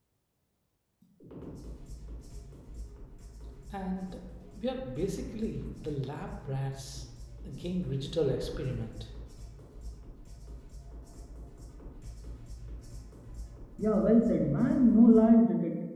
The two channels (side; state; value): both; identical; correlation 1.00